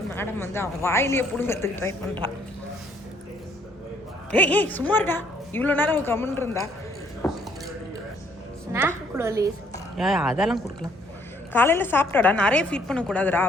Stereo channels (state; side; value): normal; both; correlation 0.66